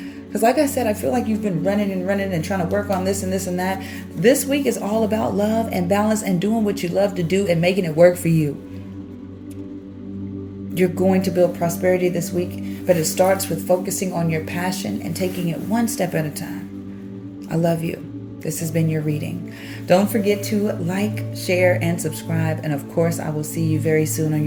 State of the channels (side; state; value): both; identical; correlation 1.00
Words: Because like I said, I feel like you've been running and trying to work on this and this and that. This week is all about love and balance and doing what you love to do and making it work for you. You're going to build prosperity this week, but it starts with focusing on your passion and taking it one step at a time. I love you. This has been your reading. Don't forget to like, share, and subscribe. And of course, I will see you very soon on